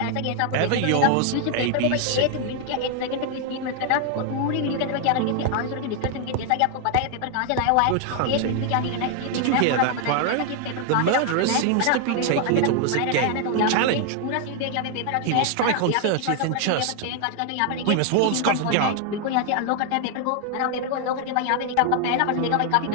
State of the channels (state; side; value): different; both; correlation 0.00